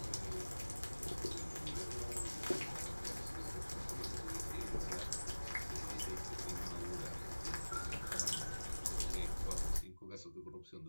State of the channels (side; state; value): both; inverted; correlation -1.00